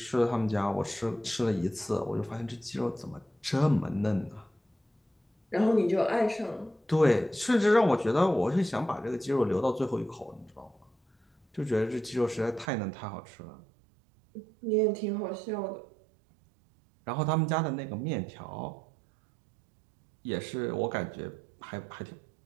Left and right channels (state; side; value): drops out; left; at 12.7 s